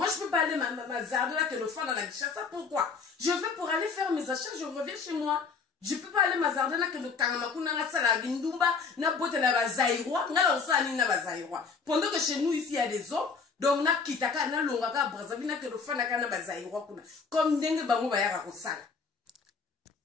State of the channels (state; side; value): quieter; right; 5.2 dB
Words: je peux pas aller ma zarde là, que le fan dans la Kinshasa. Pourquoi? Je vais pour aller faire mes achats, je reviens chez moi. Je peux pas aller ma zarde là, que le Kangamakuna, na sala gindumba, na bote la bazaïrois, na la osani na bazaïrois. Pendant que chez nous, ici, il y a des hommes. Donc, na kitaka na longaka Brazzaville na que le fan na bazaïrois kuna. Comme ndenge bango bayaka kosala.